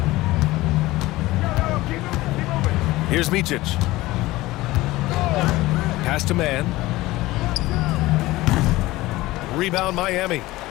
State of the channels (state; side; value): quieter; right; 18.5 dB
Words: Here's Micic. Pass to man. Rebound Miami.